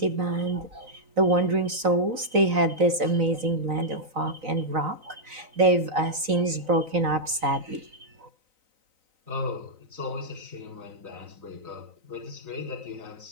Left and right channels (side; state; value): left; late; 3.9 ms